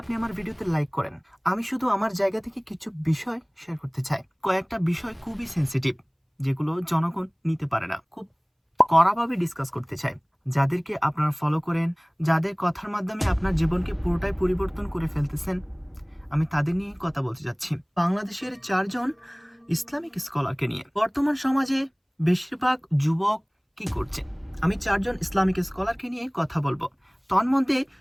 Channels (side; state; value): both; identical; correlation 1.00